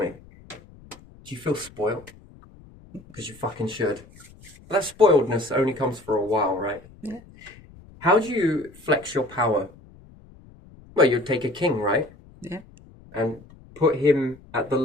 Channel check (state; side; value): noise; left; rumble, 23 dB below the sound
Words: do you feel spoiled? Because you fucking should. That spoiledness only comes for a while, right? Yeah. How do you flex your power? Well, you'd take a king, right? Yeah. And put him at the